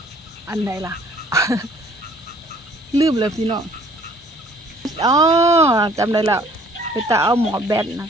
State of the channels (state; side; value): normal; both; correlation 0.57